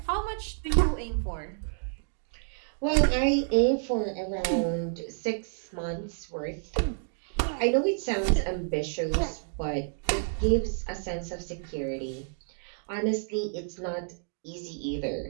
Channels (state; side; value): silent; left; digital silence